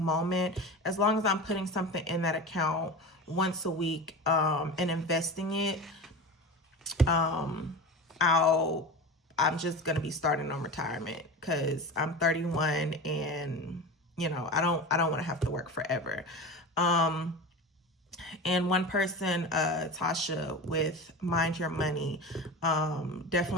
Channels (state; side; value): normal; both; correlation 0.29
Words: as long as I'm putting something in that account once a week and investing it, I'm just gonna be starting on retirement because I'm 31 and I don't want to have to work forever. And one person, Tasha with Mind Your Money,